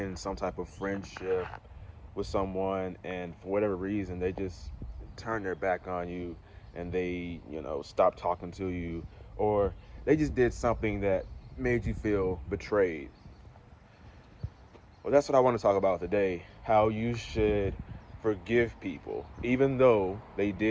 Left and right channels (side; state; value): both; identical; correlation 1.00